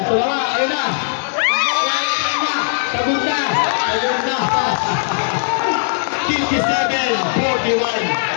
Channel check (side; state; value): right; silent; 65 dB below the other